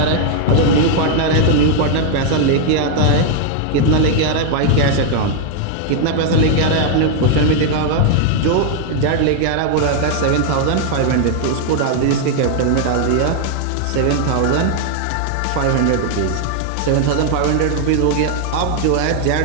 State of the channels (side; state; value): both; different; correlation 0.00